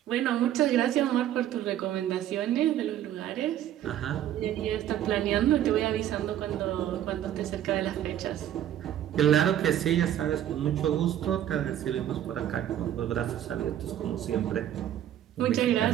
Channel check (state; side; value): quieter; left; 11.5 dB